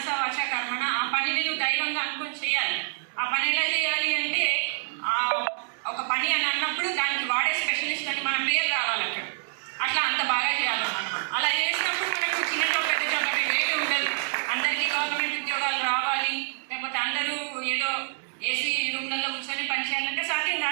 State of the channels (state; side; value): silent; left; digital silence